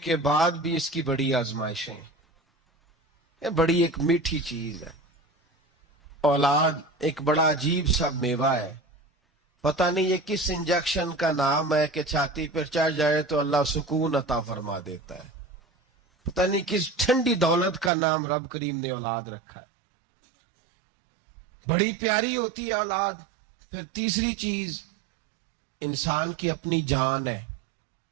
بعد بھی اس کی بڑی آزمائشیں. یہ بڑی ایک میٹھی چیز ہے. اولاد ایک بڑا عجیب سا میوہ ہے. پتہ نہیں یہ کس انجیکشن کا نام ہے کہ چھاتی پر چڑھ جائے تو اللہ سکون عطا فرما دیتا ہے. پتہ نہیں کس ٹھنڈی دولت کا نام رب کریم نے اولاد رکھا ہے. بڑی پیاری ہوتی ہے اولاد. پھر تیسری چیز انسان کی اپنی جان ہے.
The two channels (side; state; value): left; drops out; at 17.9 s